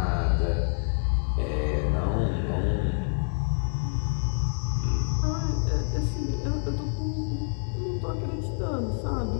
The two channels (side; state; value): right; silent; 59 dB below the other